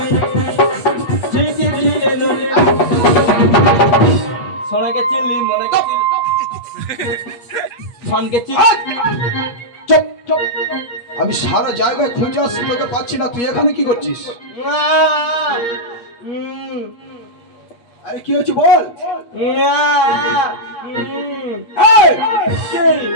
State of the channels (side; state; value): right; late; 8.4 ms